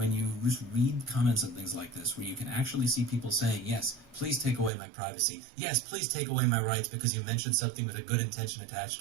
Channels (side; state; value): left; drops out; at 4.7 s